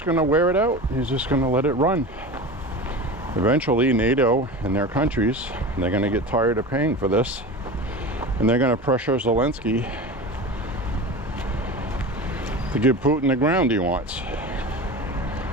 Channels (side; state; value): both; normal; correlation 0.31